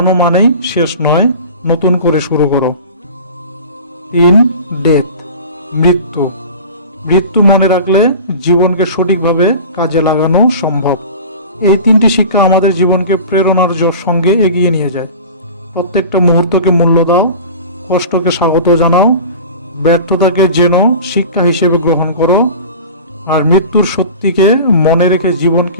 মানেই শেষ নয়, নতুন করে শুরু করো। 3. ডেথ, মৃত্যু, মৃত্যু মনে রাখলে জীবনকে সঠিকভাবে কাজে লাগানো সম্ভব। এই 3টি শিক্ষা আমাদের জীবনকে প্রেরণার সঙ্গে এগিয়ে নিয়ে যায়। প্রত্যেকটা মুহূর্তকে মূল্য দাও, কষ্টকে স্বাগত জানাও, ব্যর্থতাকে যেন শিক্ষা হিসেবে গ্রহণ করো, আর মৃত্যুর সত্যিকে মনে রেখে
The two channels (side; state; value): both; inverted; correlation -0.37